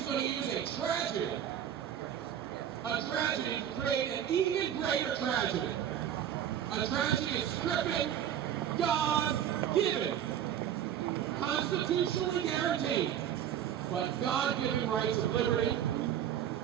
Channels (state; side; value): quieter; left; 9.9 dB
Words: going to use a tragedy to create an even greater tragedy. A tragedy of stripping God-given, constitutionally guaranteed, but God-given rights of liberty